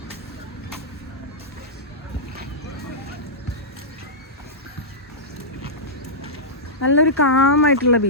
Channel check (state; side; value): normal; both; correlation -0.13